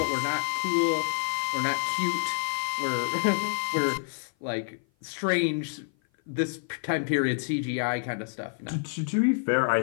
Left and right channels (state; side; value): silent; right; 55 dB below the other